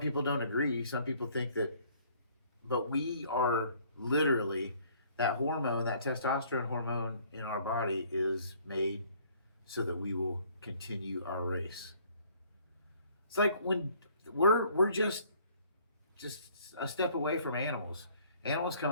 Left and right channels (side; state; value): both; inverted; correlation -0.59